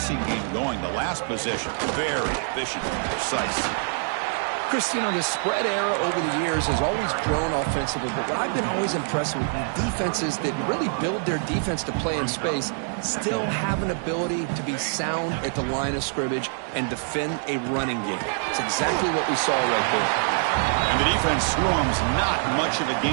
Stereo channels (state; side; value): silent; left; 62 dB below the other